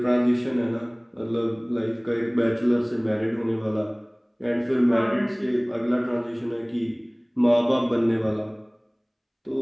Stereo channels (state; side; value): identical; both; correlation 1.00